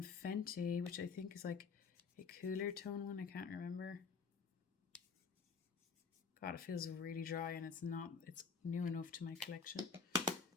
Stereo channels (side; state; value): right; quieter; 5.4 dB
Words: Fenty, which I think is like a cooler tone one. I can't remember. God, it feels really dry, and it's new enough to my collection.